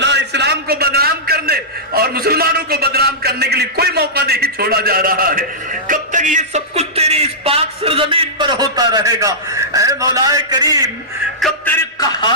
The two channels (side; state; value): both; normal; correlation -0.14